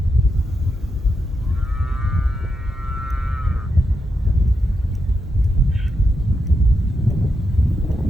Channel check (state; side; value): noise; right; rumble, 17 dB below the sound